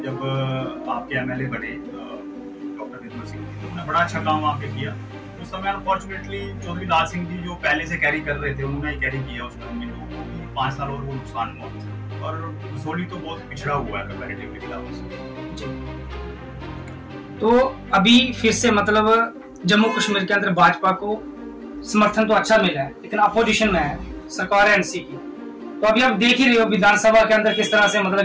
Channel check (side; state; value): both; identical; correlation 1.00